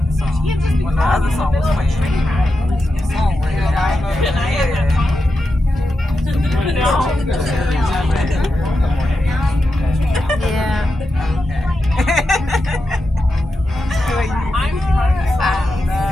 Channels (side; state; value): both; normal; correlation 0.89